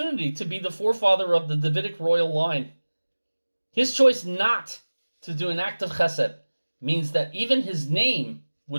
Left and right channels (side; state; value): both; inverted; correlation -1.00